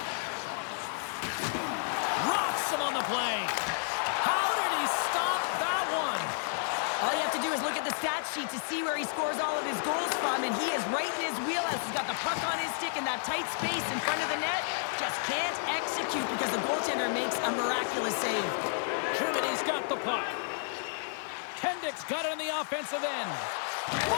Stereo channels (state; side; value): silent; right; digital silence